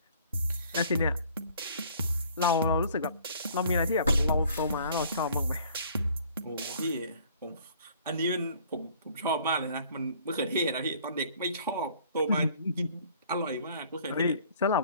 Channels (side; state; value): both; inverted; correlation -0.55